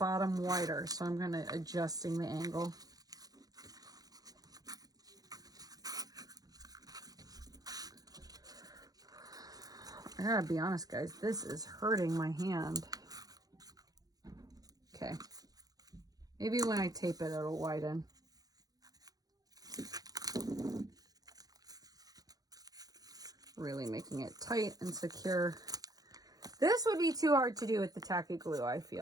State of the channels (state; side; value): late; left; 0.18 ms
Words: wider. So I'm going to adjusting the angle. I gotta be honest, guys, this is hurting my hand. Okay. Maybe when I tape it, it'll widen. Really making it tight and secure. This would be too hard to do with the tacky glue, I